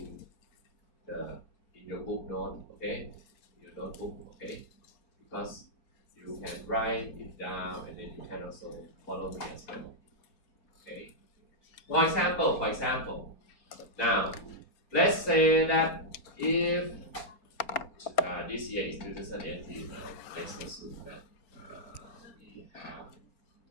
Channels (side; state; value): right; late; 4.3 ms